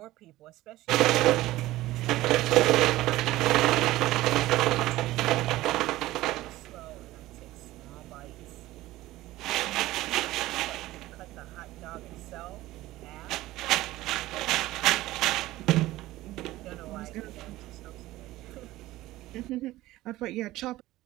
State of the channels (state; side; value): quieter; left; 16.9 dB